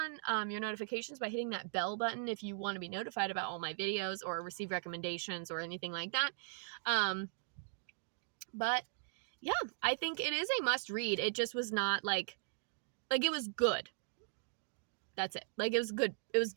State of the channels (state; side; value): silent; left; digital silence